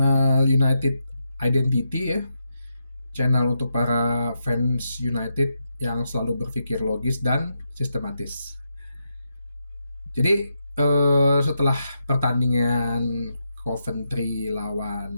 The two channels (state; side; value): inverted; both; correlation -0.85